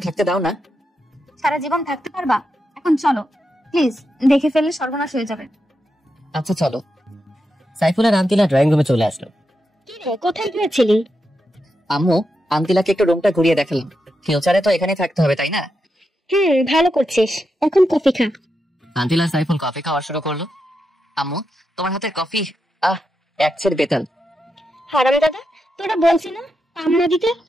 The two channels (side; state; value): both; normal; correlation 0.86